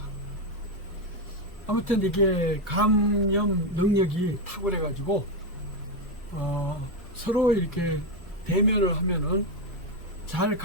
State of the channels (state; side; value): normal; both; correlation 0.07